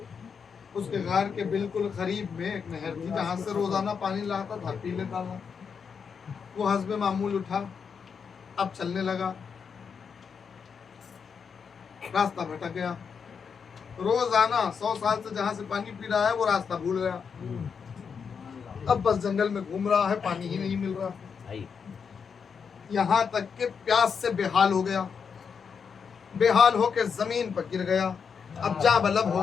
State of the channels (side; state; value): right; quieter; 6.3 dB